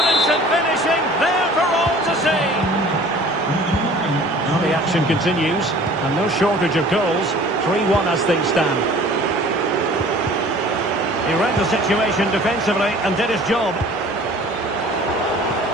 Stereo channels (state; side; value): normal; both; correlation 0.48